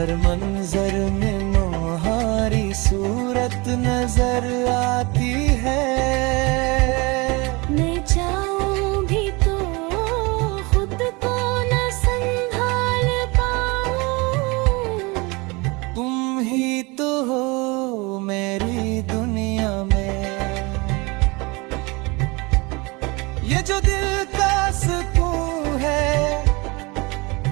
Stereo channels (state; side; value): quieter; left; 26.1 dB